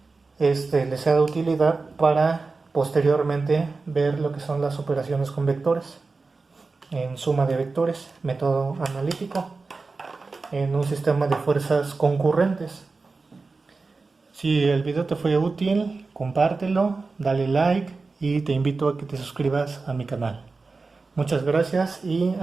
les sea de utilidad para posteriormente ver lo que son las operaciones con vectores en suma de vectores, método analítico, en un sistema de fuerzas concurrentes. Si el video te fue útil, compártelo, dale like y te invito a que te suscribas a mi canal. Muchas gracias y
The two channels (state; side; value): quieter; left; 4.0 dB